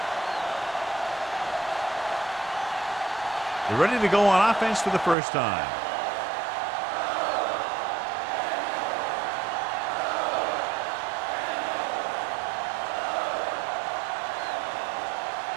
They're ready to go on offense for the first time.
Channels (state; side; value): drops out; left; at 5.2 s